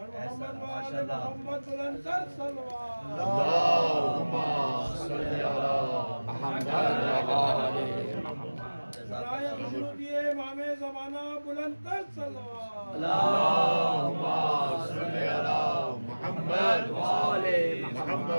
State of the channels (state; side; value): inverted; both; correlation -1.00